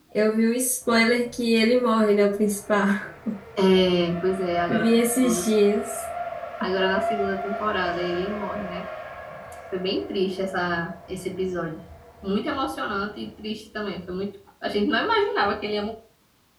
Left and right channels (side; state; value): both; identical; correlation 1.00